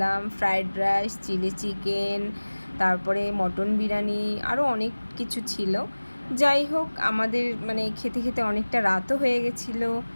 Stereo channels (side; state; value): both; inverted; correlation -1.00